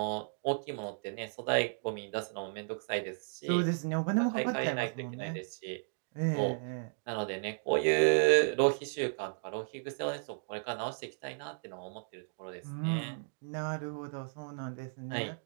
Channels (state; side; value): silent; left; digital silence